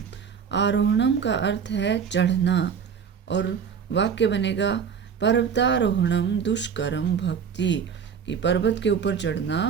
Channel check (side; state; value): left; quieter; 6.9 dB